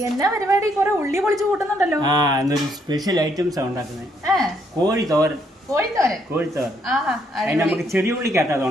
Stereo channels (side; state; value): both; normal; correlation 0.72